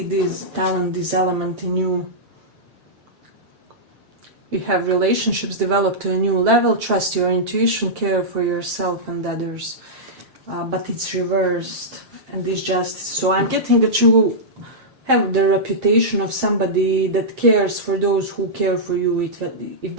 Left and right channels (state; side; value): late; left; 7.6 ms